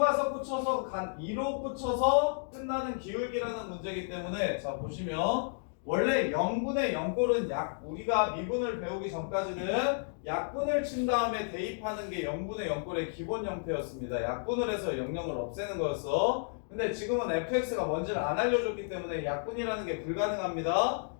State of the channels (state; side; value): silent; right; digital silence